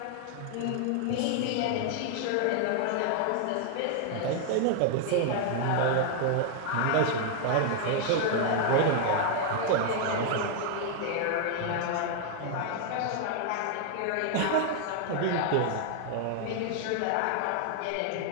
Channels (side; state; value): both; different; correlation 0.00